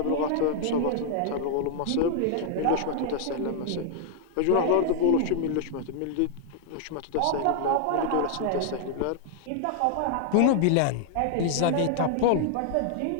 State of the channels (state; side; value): different; both; correlation 0.00